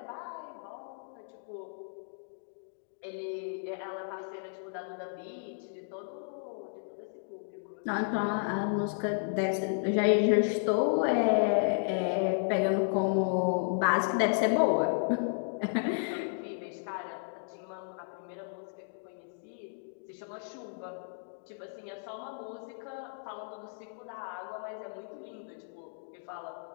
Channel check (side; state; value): right; silent; digital silence